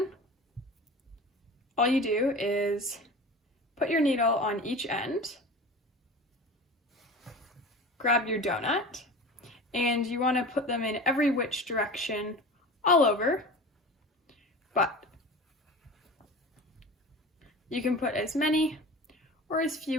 All you do is put your needle on each end, grab your donut, and you want to put them in every which direction all over, but you can put as many or as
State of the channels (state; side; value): normal; both; correlation 0.35